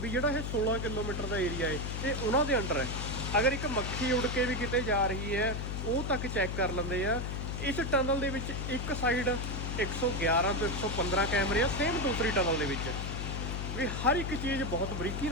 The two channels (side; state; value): left; noise; hum, 3 dB below the sound